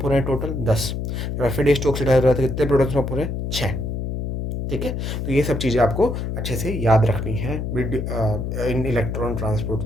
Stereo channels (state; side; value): noise; left; hum, 3 dB below the sound